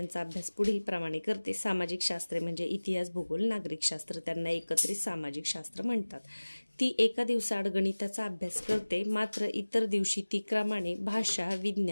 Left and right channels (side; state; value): both; inverted; correlation -1.00